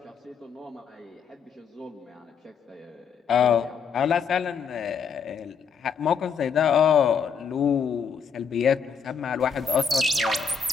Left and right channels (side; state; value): right; quieter; 6.4 dB